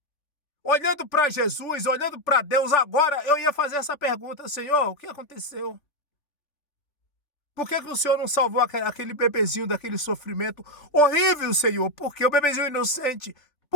olhando para Jesus, olhando para Deus agora, eu ia fazer essa pergunta: Senhor, o que aconteceu? Por que o Senhor não salvou aquele bebezinho daquele sofrimento horrível, Senhor? Porque o bebezinho inocente,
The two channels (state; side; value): late; right; 3.5 ms